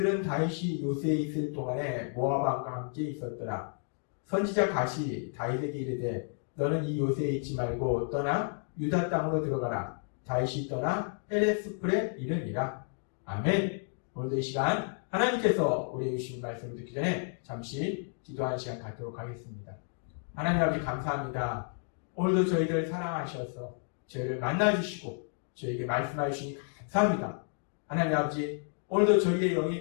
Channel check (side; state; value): right; silent; 55 dB below the other